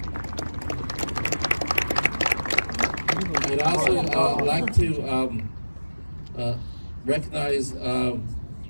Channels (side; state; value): both; inverted; correlation -1.00